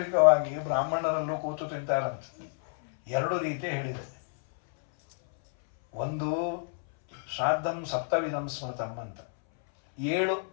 ಬ್ರಾಹ್ಮಣರಲ್ಲೂ ಕೂತು ತಿಂತಾರಂತೆ. ಎರಡು ರೀತಿ ಹೇಳಿದೆ. ಒಂದು ಶ್ರಾದ್ದಂ ಸಪ್ತವಿಧಂ ಸ್ಮೃತಂ ಅಂತ, 7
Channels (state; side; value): silent; right; 59 dB below the other